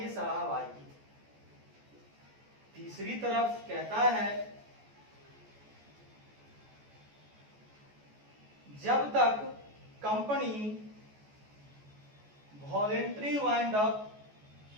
साहब आइए, तीसरी तरफ कहता है जब तक कंपनी वॉलेंट्री वाइंड अप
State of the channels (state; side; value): late; left; 14 ms